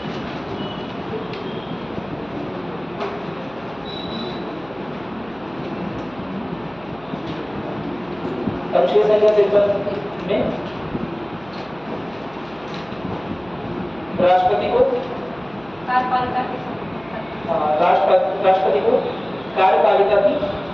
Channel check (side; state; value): right; noise; hum, 24 dB below the sound